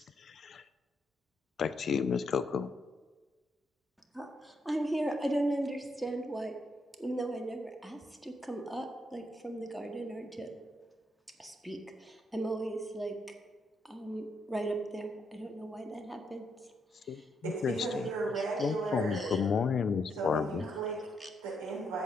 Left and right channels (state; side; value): normal; both; correlation 0.78